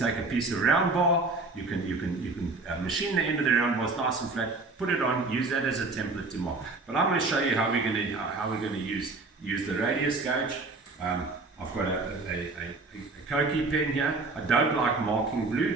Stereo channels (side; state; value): left; quieter; 3.6 dB